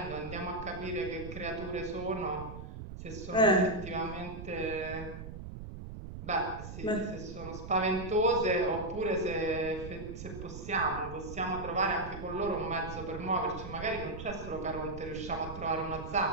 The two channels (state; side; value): noise; right; rumble, 10 dB below the sound